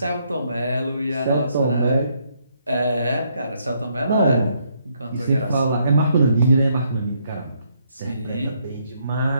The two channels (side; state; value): both; inverted; correlation -0.72